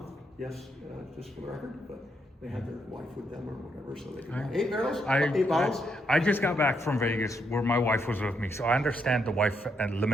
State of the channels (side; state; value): both; normal; correlation 0.77